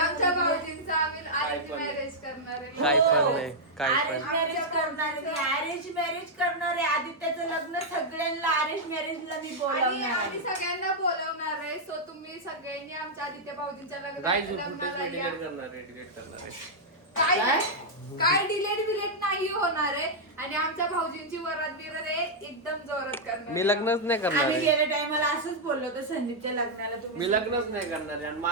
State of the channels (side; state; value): both; normal; correlation -0.05